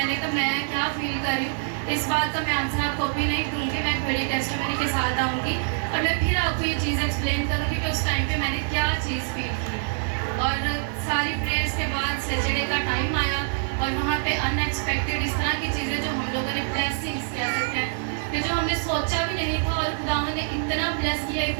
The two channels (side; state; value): left; silent; digital silence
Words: कहा मैं क्या फील कर रही हूँ, इस बात का मैं आंसर आपको भी नहीं दूँगी, मैं एक बड़ी टेस्टिमनी के साथ आऊँगी और मैं फिर आपको ये चीज़ एक्सप्लेन करूँगी कि उस टाइम पे मैंने क्या चीज़ फील की। और सारी प्रेयर्स के बाद सैटरडे का टाइम आया और वहाँ पे अनएक्सपेक्टेड इस तरह की चीज़ें जो हम लोगों ने ब्लेसिंग्स कह सकते हैं कि जो हमने सोचा भी नहीं था, और खुदावंद ने इतना ब्लेस